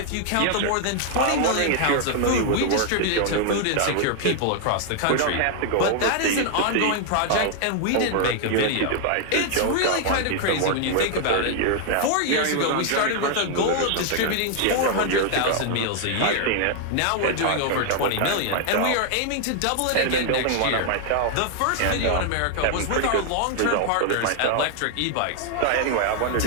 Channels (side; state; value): both; different; correlation 0.00